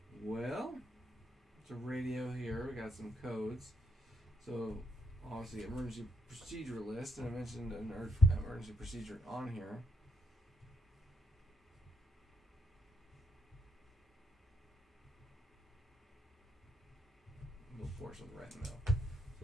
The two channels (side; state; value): both; normal; correlation 0.77